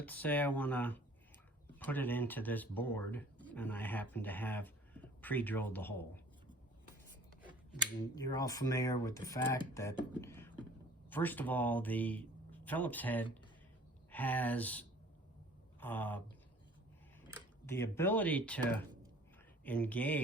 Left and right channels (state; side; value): normal; both; correlation 0.51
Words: say I want to put it into this board and I happen to have pre-drilled the hole. And you're all familiar with the fact that, first of all, the Phillips head has the ability to